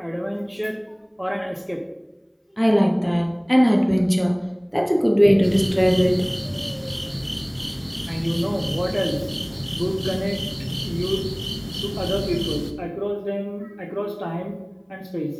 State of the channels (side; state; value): both; identical; correlation 1.00